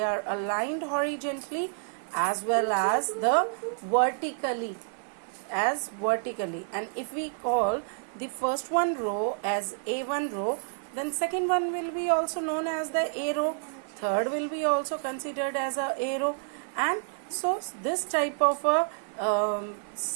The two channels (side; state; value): left; silent; digital silence